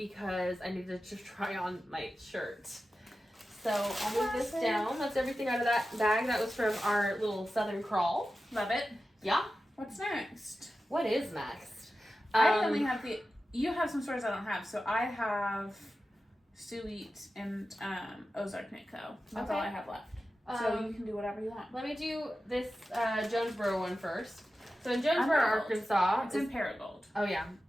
I needed to try on my shirt. So I'll move this down. That's everything out of that bag. That was from our little Southern Crawl. Love it. Yeah. What's next? What is next? I only have you have some stores I don't have. So I have Suite and Ozark Knit Co. That's all I have left. So you can do whatever you want. Let me do this Jonesboro one first. So in Jonesboro, Arkansas. It's in Paragold. Oh yeah,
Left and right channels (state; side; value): normal; both; correlation 0.93